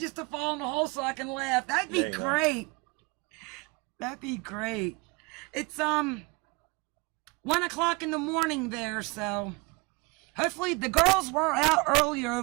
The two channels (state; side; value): quieter; left; 27.2 dB